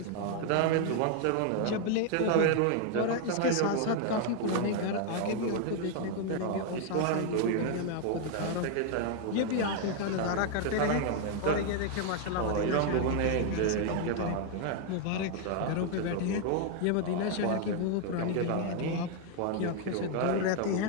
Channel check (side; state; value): both; different; correlation 0.00